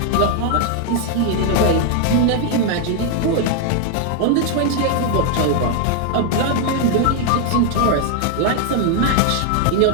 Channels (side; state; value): both; different; correlation 0.00